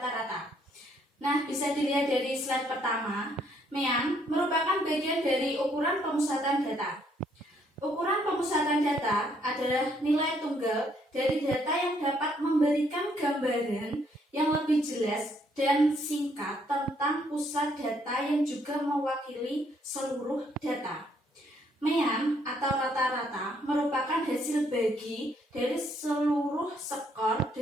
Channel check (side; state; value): both; normal; correlation 0.69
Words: Nah, bisa dilihat dari slide pertama. MEAN merupakan bagian dari ukuran pemusatan data. Ukuran pemusatan data adalah nilai tunggal dari data yang dapat memberikan gambaran yang lebih jelas dan singkat tentang pusat data yang juga mewakili seluruh data. MEAN atau rata-rata merupakan hasil bagi dari seluruh skor